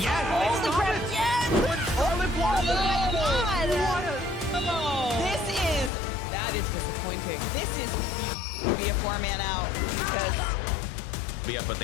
Oh, the grab! Yes! That is disappointing. This is be a 4-man out because. Yeah, but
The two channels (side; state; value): right; drops out; at 5.9 s